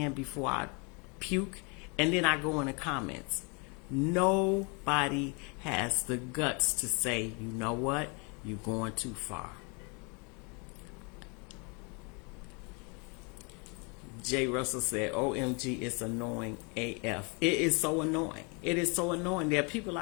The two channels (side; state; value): right; quieter; 32.9 dB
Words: before I puke, and then I go in the comments. Nobody has the guts to say, you know what, you're going too far. Jay Russell said, OMG, it's annoying AF. It is so annoying. It is so annoying. There are people